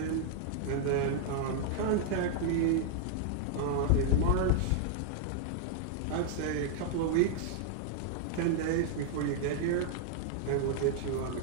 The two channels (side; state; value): both; different; correlation 0.00